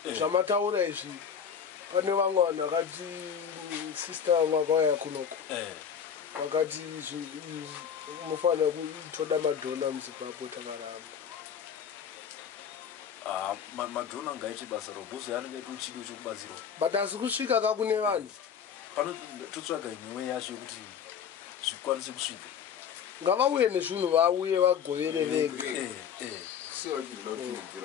zvamataura izvi pane vamwe vanhu vakati sister vamwe vakauya kunoko vakati mufanira kutoda madhona muzimbabwe takaramba madhona ngaite basa robhuzi yanenge aita uchido chekubatsirwa but asi kusvika ka kune vanhu pano totsvaga imwewe yacho yekuti zvikwanise kusvika ngavauye nezvinhu vauye vagovere vega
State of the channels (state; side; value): quieter; right; 7.6 dB